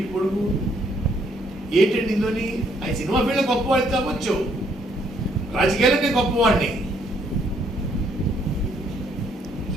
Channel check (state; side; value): normal; both; correlation 0.68